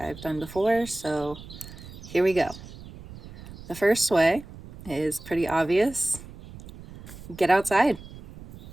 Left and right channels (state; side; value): noise; right; rumble, 16 dB below the sound